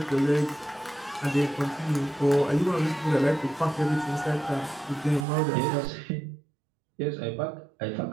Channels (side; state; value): left; drops out; at 5.2 s